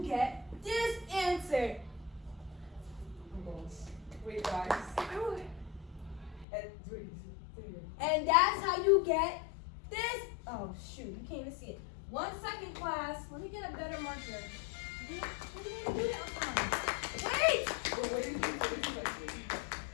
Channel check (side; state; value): right; drops out; at 6.5 s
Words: get this answer. Oh my gosh. Wait, guys. And wait, say it again. And that's how you get this. Oh, shoot. You can't even see it. 1 second, class. Let me get a better marker. Wait!